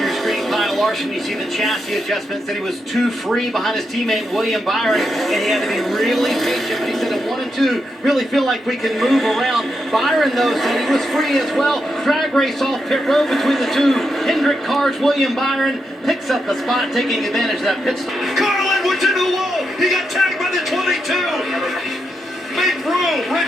screen, Kyle Larson. You see the chassis adjustment. Said he was too free behind his teammate William Byron, and he had to be really patient. But he said at 1 and 2, really feel like we can move around. Byron, though, said he was free as well. Drag race off pit road between the two Hendrick cars. William Byron picks up the spot, taking advantage of that pit stop. Carl Edwards into the wall. He got tagged by the 22. Make room.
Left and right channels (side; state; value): both; normal; correlation 0.84